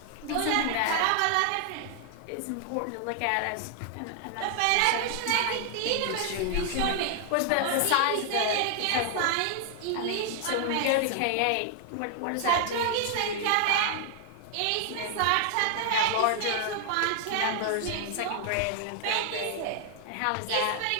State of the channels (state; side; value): different; both; correlation 0.00